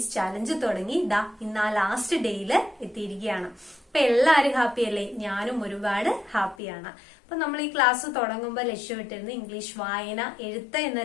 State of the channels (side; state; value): right; drops out; at 6.6 s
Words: ചാലഞ്ച് തുടങ്ങി ഇന്ന് ലാസ്റ്റ് ഡേയില് എത്തിയിരിക്കുകയാണ്. അപ്പൊ എല്ലാവരും ഹാപ്പി അല്ലേ? ഞാനും ഒരുപാട് ഹാപ്പിയാണ്. അപ്പൊ നമ്മൾ ഈ ക്ലാസ് തുടങ്ങുമ്പോൾ ലക്ഷ്യമിട്ടിരുന്ന ഇംഗ്ലീഷ് വായന, എഴുത്ത് എന്ന